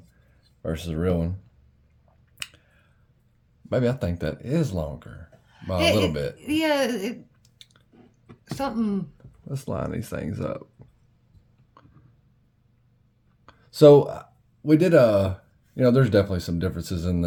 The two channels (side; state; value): both; identical; correlation 1.00